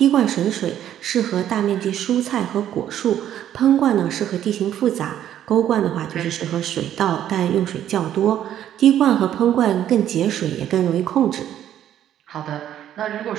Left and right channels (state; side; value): quieter; left; 11.0 dB